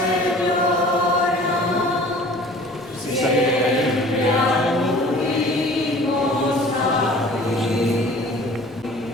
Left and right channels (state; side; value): normal; both; correlation 0.47